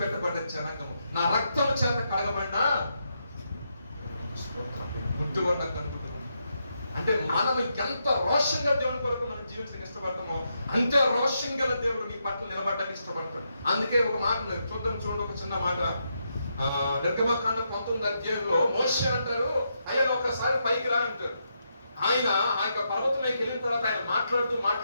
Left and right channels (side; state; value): both; inverted; correlation -0.82